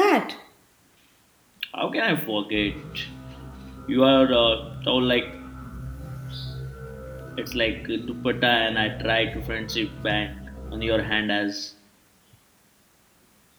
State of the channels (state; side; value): identical; both; correlation 1.00